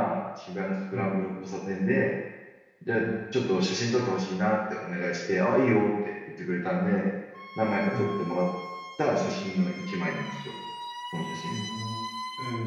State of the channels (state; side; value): identical; both; correlation 1.00